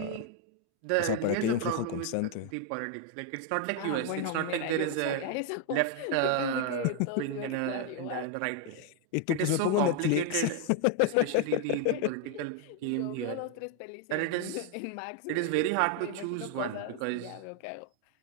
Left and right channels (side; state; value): both; different; correlation 0.00